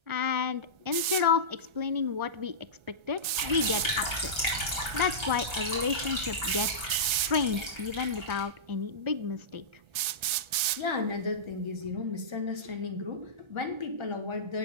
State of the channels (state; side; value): late; left; 1.3 ms